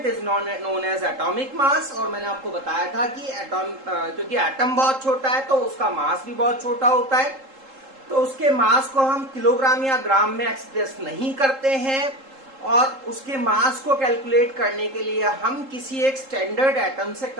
is known as atomic mass और मैंने आपको बताया था कि एटॉम क्योंकि एटम बहुत छोटा है तो उसका मास भी बहुत छोटा होता है तो उसके मास को हम किलोग्राम या ग्राम में एक्सप्रेस नहीं करते हैं और उसके मास को कैलकुलेट करने के लिए हम किसी एक स्टैंडर्ड एटम से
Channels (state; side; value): late; left; 3.7 ms